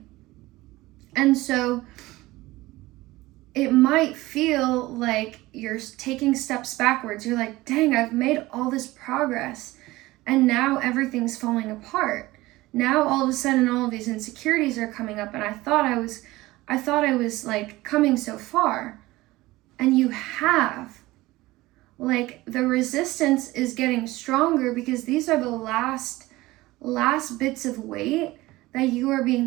And so it might feel like you're taking steps backwards. You're like, dang, I've made all this progress and now everything's falling apart. Now all of a sudden all of these insecurities are coming up, and I thought I I thought I was like coming so far. And you have. Like, the resistance is getting stronger because these are the last bits of weight that you are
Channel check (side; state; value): left; quieter; 19.0 dB